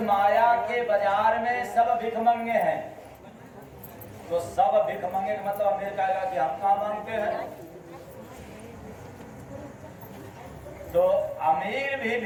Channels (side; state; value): both; identical; correlation 1.00